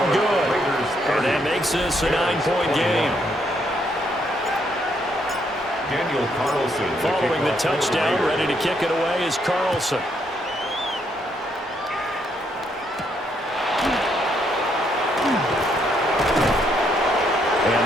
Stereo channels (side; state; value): both; normal; correlation 0.73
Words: good. And that makes this a 9-point game. Daniel Carlson Following the touchdown, ready to kick it away is Carlson.